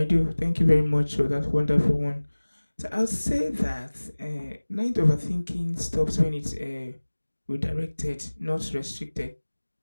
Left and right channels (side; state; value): both; inverted; correlation -1.00